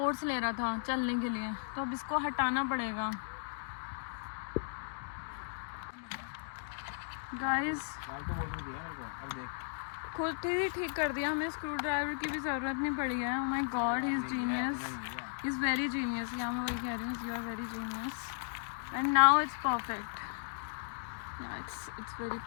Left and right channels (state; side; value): silent; right; digital silence